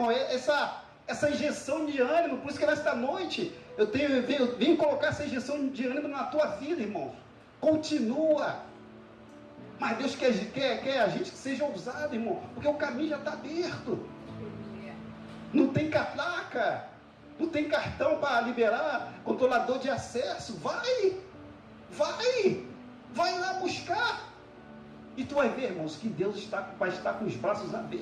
essa injeção de ânimo. Por isso que nesta noite eu venho colocar essa injeção de ânimo na tua vida, irmãos. Continua. Mas Deus quer a gente que seja ousado, irmão. Porque o caminho já está aberto. Não tem catraca. Não tem cartão para liberar controlador de acesso. Vai lá buscar. E tu vai ver, irmãos, que Deus vai estar com os braços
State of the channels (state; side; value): identical; both; correlation 1.00